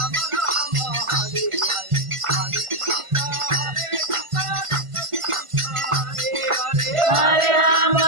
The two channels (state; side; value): late; left; 1.5 ms